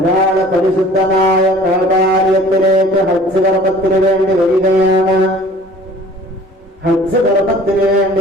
പരിശുദ്ധമായ കഅബാലയത്തിലേക്ക് ഹജ്ജ് കർമ്മത്തിന് വേണ്ടി വരികയാണ്. ഹജ്ജ് കർമ്മത്തിന് വേണ്ടി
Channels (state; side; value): normal; both; correlation 0.48